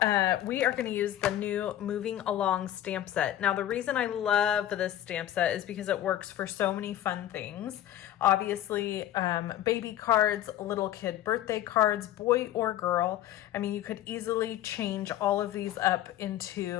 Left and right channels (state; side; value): quieter; right; 12.5 dB